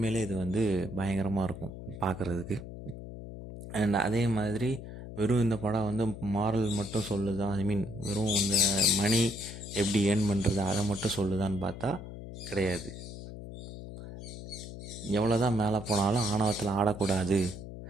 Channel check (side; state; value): left; noise; hum, 11 dB below the sound